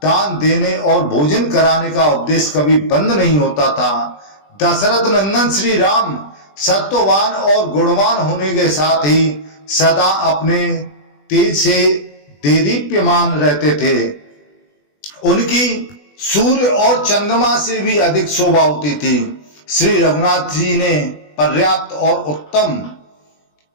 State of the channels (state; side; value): late; right; 20 ms